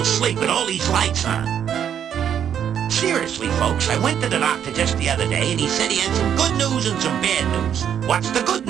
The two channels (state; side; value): quieter; left; 9.0 dB